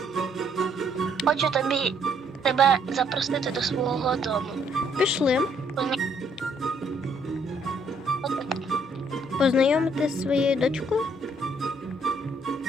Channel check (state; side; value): normal; both; correlation 0.67